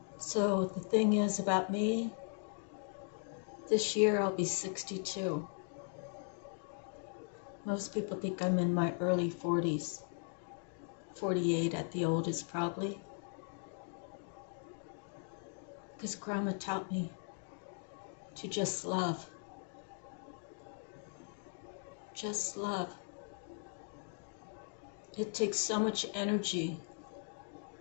So the thing is about me, this year I'll be 62. Most people think I'm in my early 40s, 48 at the oldest probably. Because Grandma taught me to just love. Just love. It takes so much energy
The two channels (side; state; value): right; silent; 52 dB below the other